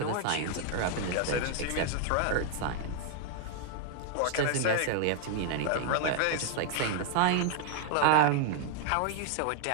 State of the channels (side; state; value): both; different; correlation 0.00